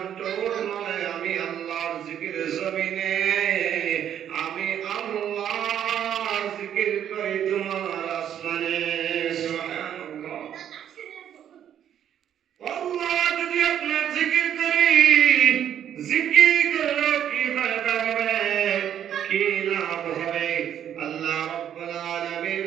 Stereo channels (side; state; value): left; quieter; 9.9 dB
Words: ঠোঁট নড়ে, আমি আল্লাহর জিকিরে জমিনে আমি আল্লাহর জিকির করি তোমার আসমানে। সুবহানাল্লাহ। আল্লাহ যদি আপনার জিকির করি, জিকির করলে কি ফায়দা হবে, কি লাভ হবে? আল্লাহ রাব্বুল আলামিন